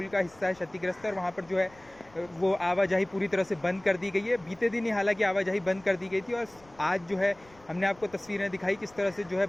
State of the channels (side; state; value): left; noise; rumble, 27 dB below the sound